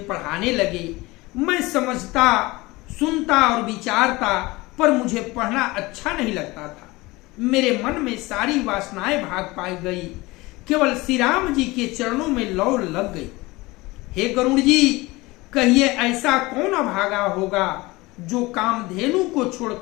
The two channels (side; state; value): right; quieter; 21.7 dB